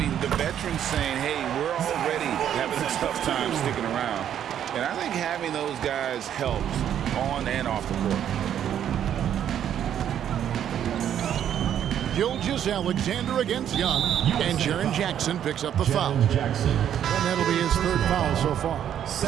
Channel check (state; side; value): quieter; left; 9.9 dB